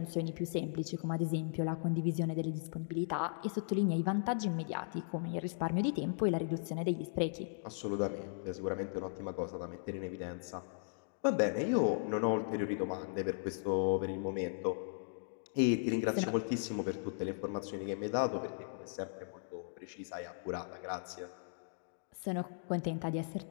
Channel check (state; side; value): silent; right; digital silence